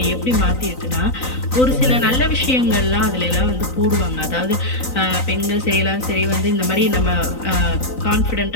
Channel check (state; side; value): late; right; 3.9 ms